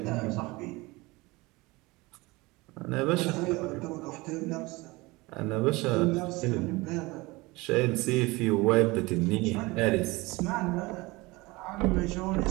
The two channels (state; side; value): quieter; left; 22.7 dB